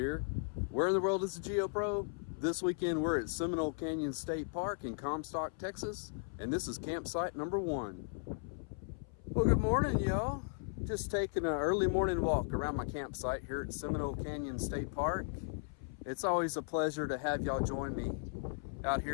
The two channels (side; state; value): right; silent; 53 dB below the other